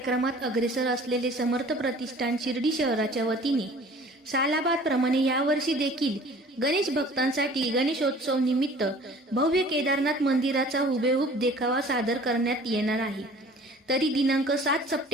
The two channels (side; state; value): both; normal; correlation 0.48